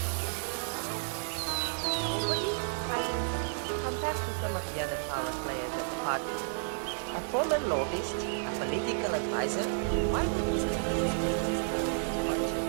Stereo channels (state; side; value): silent; left; digital silence